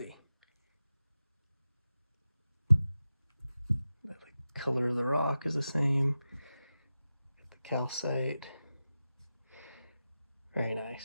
the color of the rock is the same. The calcite, very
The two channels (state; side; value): inverted; both; correlation -0.93